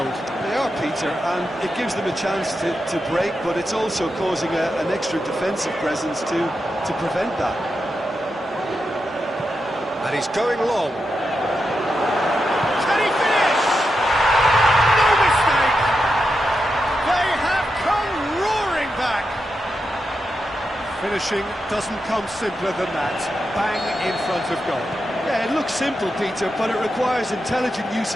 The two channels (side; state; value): both; normal; correlation 0.87